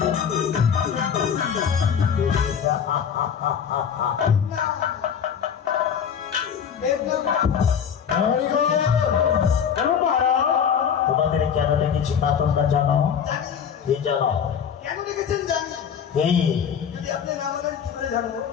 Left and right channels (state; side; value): quieter; right; 7.7 dB